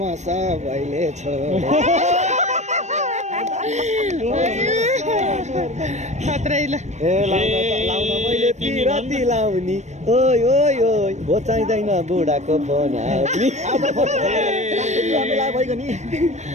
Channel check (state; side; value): late; left; 0.34 ms